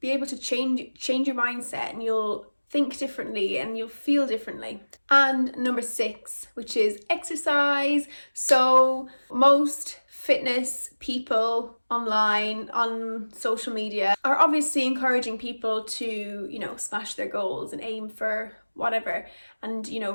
able to change your mindset, and you'll think differently and you'll feel differently. And number 6, which is exercise. So most fitness people online, on social media, are obviously encouraging people to, smash their goals and aim for whatever, and,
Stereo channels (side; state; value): both; inverted; correlation -1.00